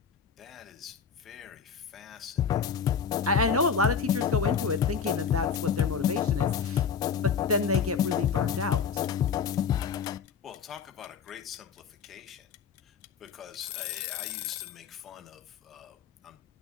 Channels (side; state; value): right; quieter; 6.5 dB